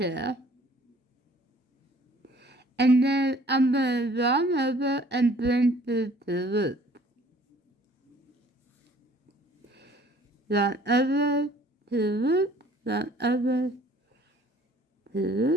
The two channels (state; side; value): normal; both; correlation 0.55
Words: And then I'm going to yarn over and bring through the loop. Yarn over to loop, yarn over to